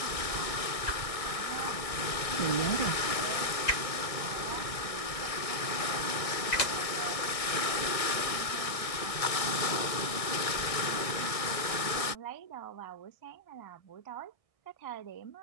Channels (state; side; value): late; right; 1.6 ms